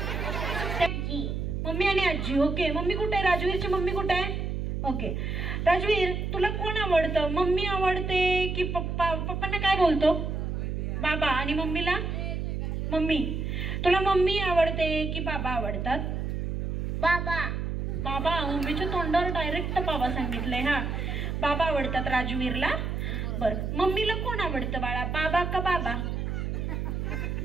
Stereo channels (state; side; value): noise; right; hum, 2 dB below the sound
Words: मम्मी आणि आजी. ओके. मम्मी कुठे आहे? राजवीरची मम्मी कुठे आहे? ओके. राजवीर तुला कोण आवडतं? मम्मी आवडते की पप्पा? पप्पांना काय बोलतो? बाबा. आणि मम्मीला? मम्मी. तुला मम्मी आवडते की बाबा आवडतात? बाबा. बाबा. मम्मीच्या तोंडावर डायरेक्ट बाबा सांगितलंय. हा बाबा आवडतात राजवीरला. बर. मम्मीला कोण आवडतं बाळा? बाबा का बाबा?